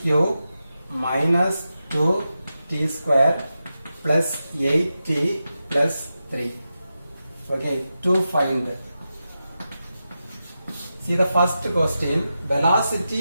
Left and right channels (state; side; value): inverted; both; correlation -0.90